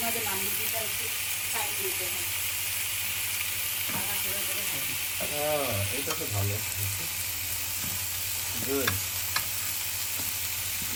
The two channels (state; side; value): identical; both; correlation 1.00